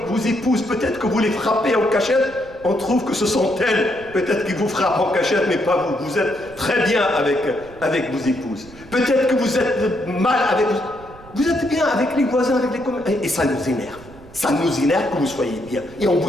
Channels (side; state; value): right; noise; rumble, 21 dB below the sound